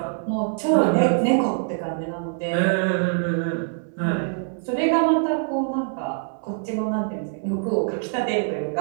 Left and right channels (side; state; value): left; silent; 63 dB below the other